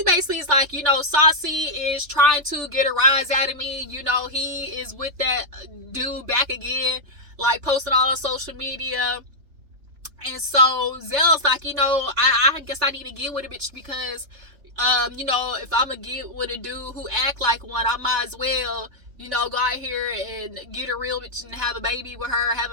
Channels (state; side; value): late; left; 3.4 ms